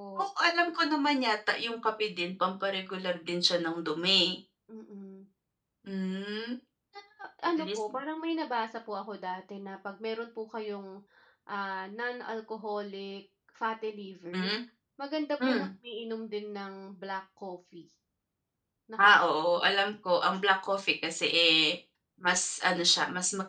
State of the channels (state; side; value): identical; both; correlation 1.00